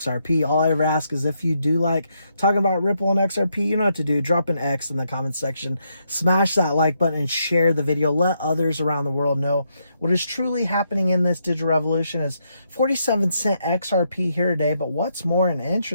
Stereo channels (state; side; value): inverted; both; correlation -0.79